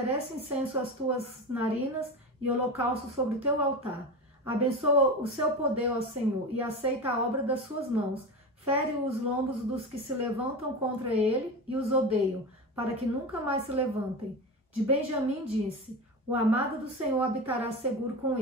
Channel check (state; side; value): normal; both; correlation 0.24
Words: incenso às tuas narinas e holocausto sobre o teu altar. Abençoa o seu poder, ó Senhor, e aceita a obra das suas mãos. Fere os lombos dos que se levantam contra ele e os odeiam, para que nunca mais se levantem. De Benjamim disse: o amado do Senhor habitará seguro com